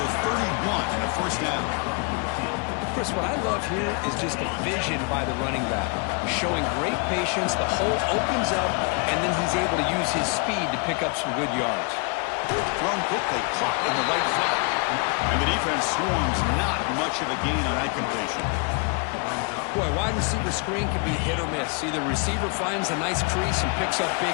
the 31 and a 1st down. Chris, what I love here is just the vision by the running back. Showing great patience, the hole opens up, and then he's able to use his speed to pick up some good yards. Thrown quickly, caught in the right flat. And the defense swarms, not much of a gain on that completion. Boy, wide receiver screen can be hit or miss. Either receiver finds a nice crease and picks up big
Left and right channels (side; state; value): right; quieter; 33.2 dB